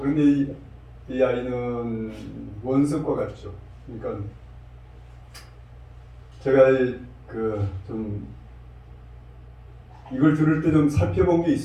이 아이는 원석과 같죠. 그러니까 제가 좀 이걸 들을 때 좀 살펴본 게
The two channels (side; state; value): both; identical; correlation 1.00